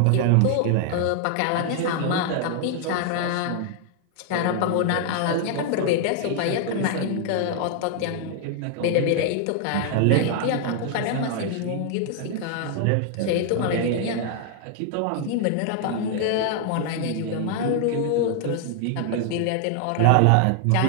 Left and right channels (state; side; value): different; both; correlation 0.00